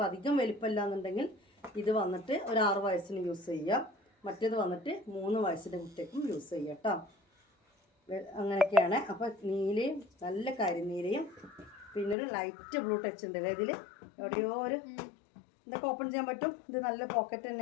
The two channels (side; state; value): right; drops out; at 12.2 s